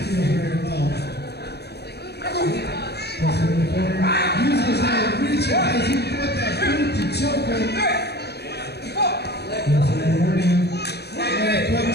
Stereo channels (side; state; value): right; late; 0.48 ms